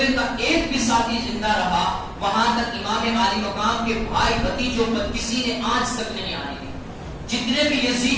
کا ایک بھی ساتھی زندہ رہا وہاں تک امام عالی مقام کے بھائی بھتیجوں پر کسی نے آنچ تک نہیں آنے دی. جتنے بھی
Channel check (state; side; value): identical; both; correlation 1.00